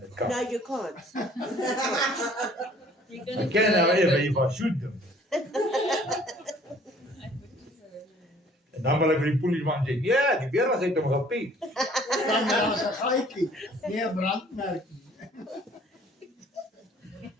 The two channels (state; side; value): normal; both; correlation 0.56